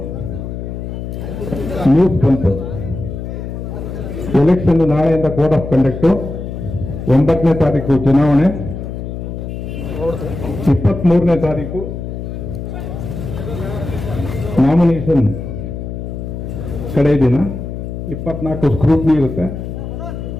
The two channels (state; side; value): noise; left; hum, 7 dB below the sound